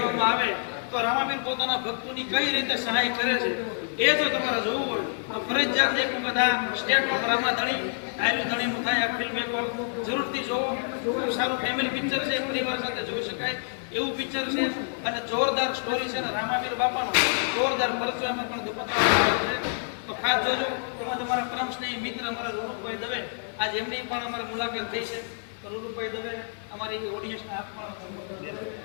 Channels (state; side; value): silent; right; digital silence